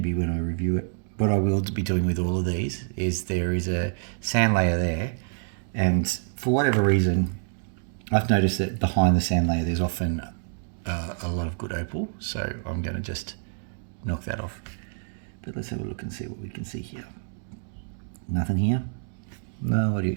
when I review it. What I will be doing with all of these is there is a sand layer there, and for whatever reason, I've noticed that behind the sand layer there's often a lot of good opal, so I'm going to just knock that off. But let's have a look and see what we can see here. Nothing here. No, what do you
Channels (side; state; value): left; silent; digital silence